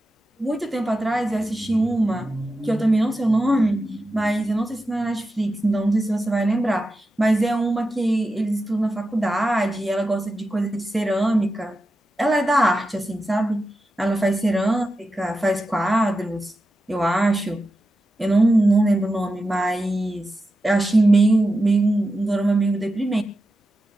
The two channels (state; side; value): normal; both; correlation 0.91